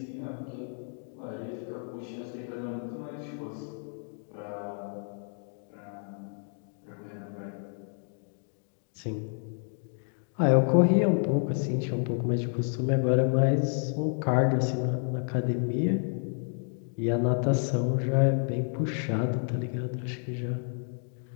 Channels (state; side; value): silent; right; 58 dB below the other